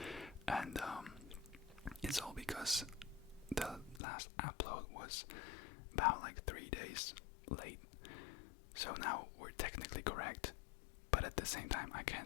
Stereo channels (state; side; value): drops out; right; at 4.0 s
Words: And it's all because the last upload was about like 3 days late. So now we're technically correct, but at the same time I